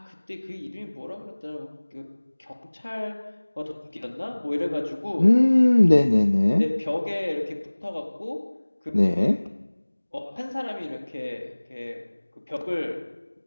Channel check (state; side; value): inverted; both; correlation -1.00